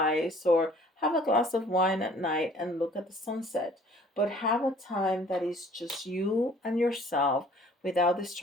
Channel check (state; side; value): normal; both; correlation 0.54